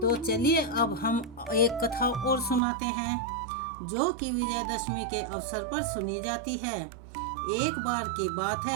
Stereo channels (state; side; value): drops out; left; at 2.6 s